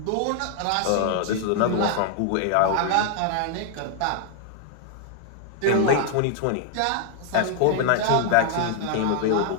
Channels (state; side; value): different; both; correlation 0.00